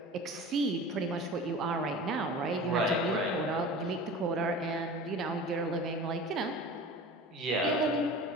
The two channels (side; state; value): both; normal; correlation 0.37